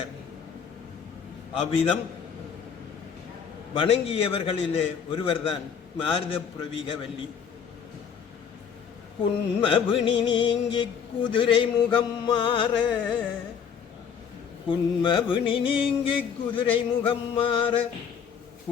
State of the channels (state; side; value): quieter; right; 7.2 dB